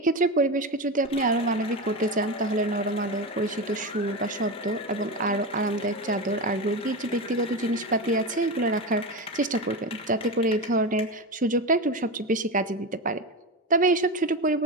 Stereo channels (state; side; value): normal; both; correlation 0.19